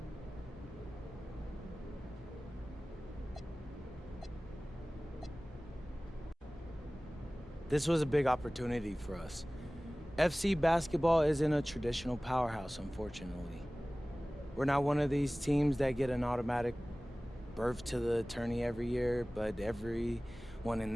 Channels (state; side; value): normal; both; correlation 0.98